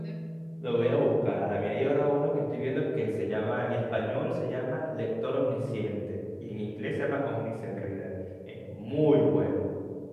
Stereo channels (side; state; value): both; identical; correlation 1.00